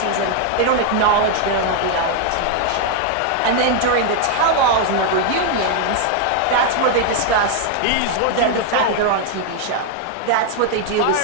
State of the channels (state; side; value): different; both; correlation 0.00